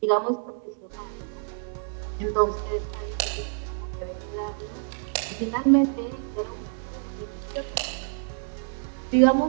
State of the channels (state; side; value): silent; left; 60 dB below the other